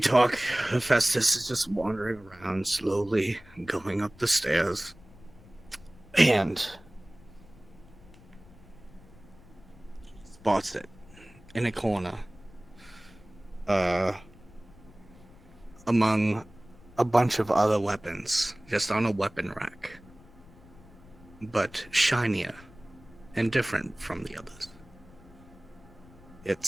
Hephaestus is just wandering around slowly, going up the stairs. And spots it in a corner. Among a bunch of other weapons, just on a weapon rack. But shinier and different from the others.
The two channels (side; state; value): left; noise; rumble, 23 dB below the sound